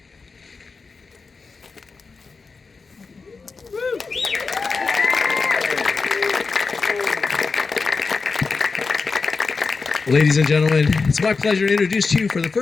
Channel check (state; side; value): quieter; right; 4.5 dB